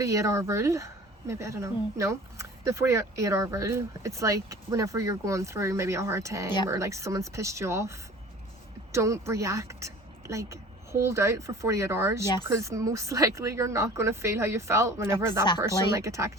rule. Maybe, I don't know. No, the 48-hour rule. It's like whenever you're going through maybe a hard time or like someone's pissed you off, don't react. Like, hold out for 48 hours, because most likely you're not going to feel how you felt whenever that person like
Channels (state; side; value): normal; both; correlation 0.44